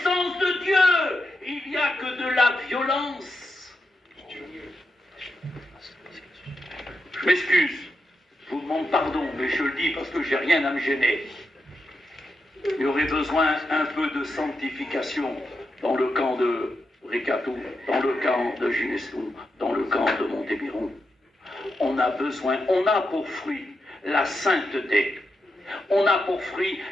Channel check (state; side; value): normal; both; correlation 0.86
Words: de Dieu. Il n'y a que de la violence. Je m'excuse, je vous demande pardon, mais je le dis parce que j'ai rien à me gêner. Il y aurait besoin un peu de sanctification dans le camp de Rikatou, dans le camp de Ginestou, dans le camp de Montébiron. On a besoin, on a pour fruit la sainteté. On a pour fruit